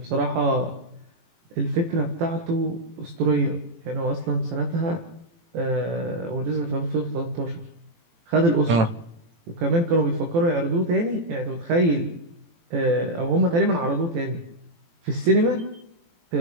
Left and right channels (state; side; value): late; left; 18 ms